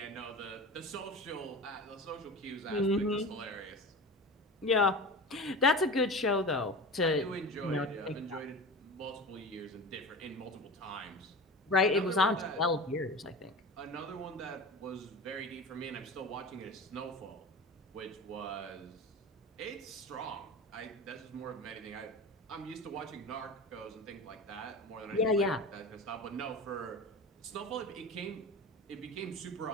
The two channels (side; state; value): both; normal; correlation 0.30